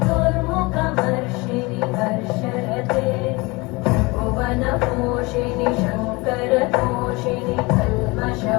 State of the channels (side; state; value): right; quieter; 24.9 dB